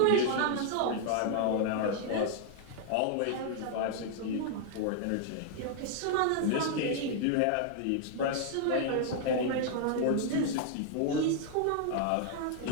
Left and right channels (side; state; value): both; different; correlation -0.01